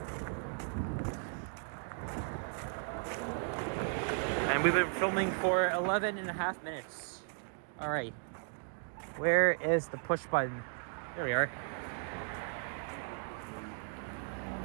And we've been filming for 11 and a half minutes. All right. Where is the push button? There we are.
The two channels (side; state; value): left; silent; 54 dB below the other